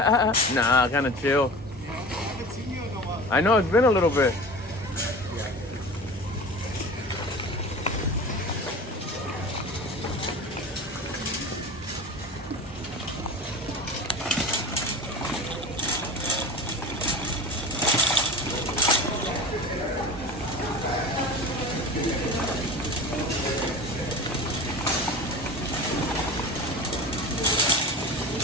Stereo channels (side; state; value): both; normal; correlation 0.34